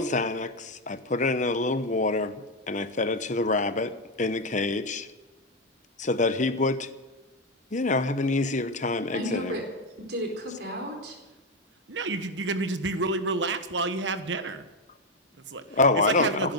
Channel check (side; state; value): both; normal; correlation 0.08